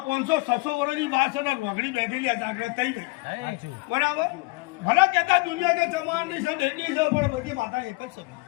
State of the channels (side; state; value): right; quieter; 25.8 dB